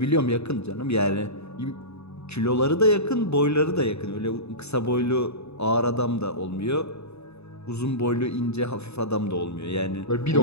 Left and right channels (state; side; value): late; right; 0.80 ms